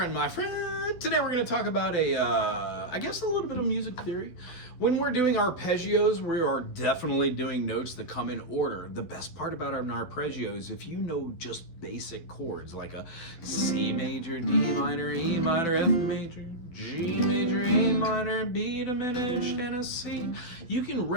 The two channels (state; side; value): late; right; 12 ms